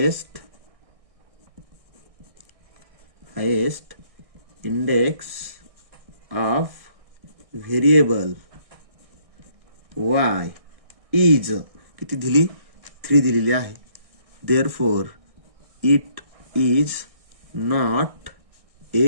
index of variable y is किती दिली, 3 दिलेली आहे. Therefore it is not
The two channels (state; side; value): late; left; 1.6 ms